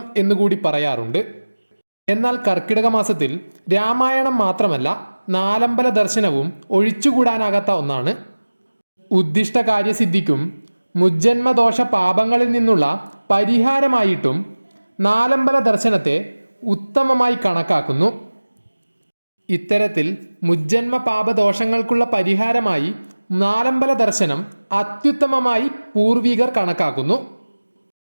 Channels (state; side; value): inverted; both; correlation -1.00